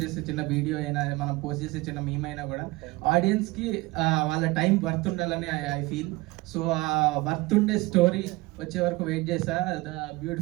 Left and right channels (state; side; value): quieter; left; 21.5 dB